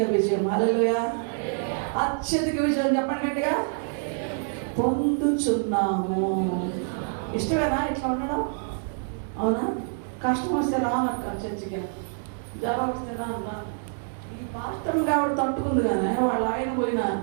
విజయం. హల్లెలూయా. అత్యధిక విజయం చెప్పండి గట్టిగా. పొందుచున్నాము. ఇష్టమేనా ఇట్లా ఉండడం? అవునా? కష్టం వస్తే రానక్క చర్చికి, జ్వరం వస్తే రాన్న. ఈ పాస్టర్ కాబట్టి తట్టుకుంది కానీ వాళ్ళ ఆయన పోయినా,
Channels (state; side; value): silent; left; digital silence